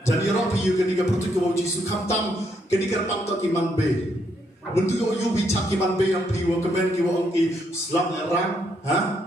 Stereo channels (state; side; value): normal; both; correlation 0.75